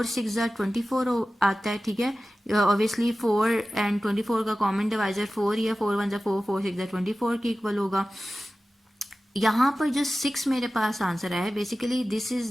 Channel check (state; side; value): normal; both; correlation 0.96